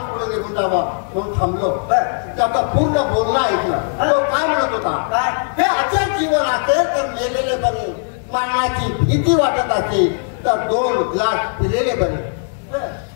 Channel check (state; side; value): silent; right; 66 dB below the other